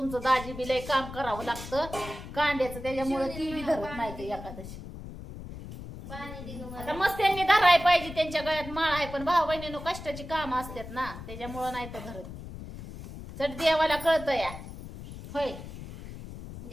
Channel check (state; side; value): noise; left; rumble, 12 dB below the sound